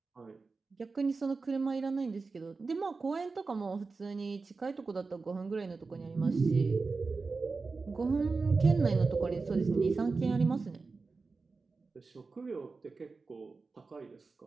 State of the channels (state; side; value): quieter; left; 4.2 dB